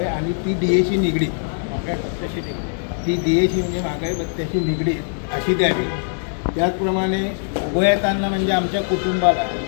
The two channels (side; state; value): right; silent; digital silence